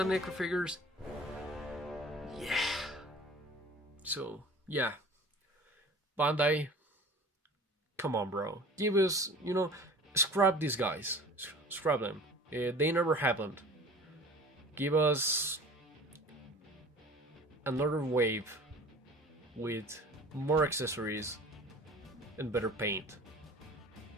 NECA figures, yeah. So yeah, Bandai, come on, bro, give us, you know, scrap these guys, scrap them. They never happened. Give us another wave with more accessories and better paint.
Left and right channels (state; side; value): normal; both; correlation 0.43